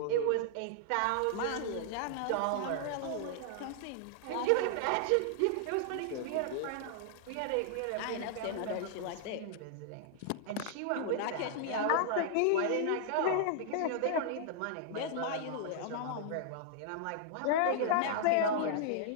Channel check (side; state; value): both; different; correlation -0.01